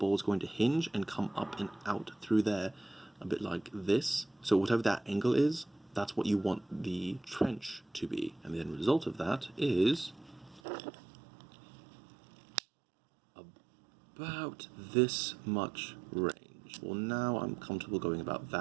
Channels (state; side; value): drops out; left; at 10.6 s